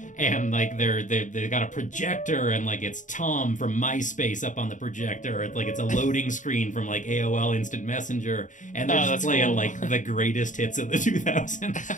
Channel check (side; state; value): right; late; 0.37 ms